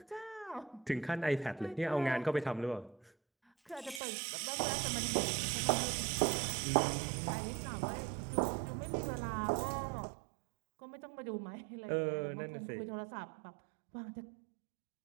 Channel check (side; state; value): left; drops out; at 4.0 s